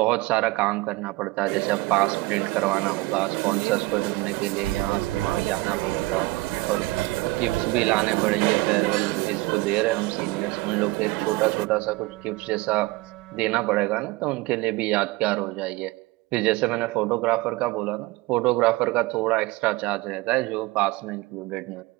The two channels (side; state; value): left; quieter; 21.3 dB